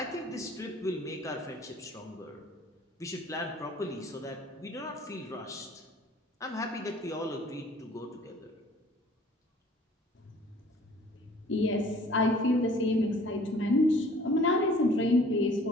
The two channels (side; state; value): both; normal; correlation 0.52